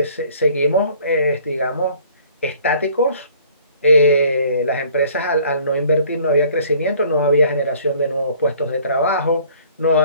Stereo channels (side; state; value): both; inverted; correlation -0.55